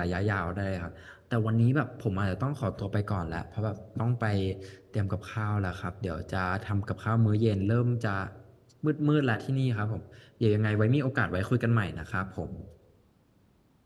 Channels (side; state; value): both; identical; correlation 1.00